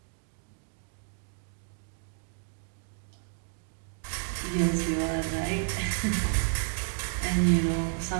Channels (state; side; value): silent; left; digital silence